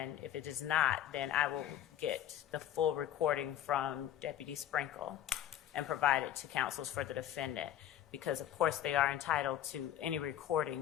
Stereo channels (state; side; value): quieter; right; 11.6 dB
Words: I will get the full recording from Deputy Sprinkle and provide it to counsels for the defendant, because of course they are entitled to any